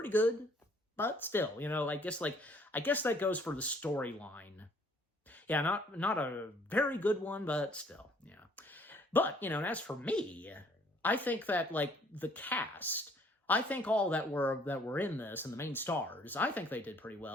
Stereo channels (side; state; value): both; normal; correlation 0.60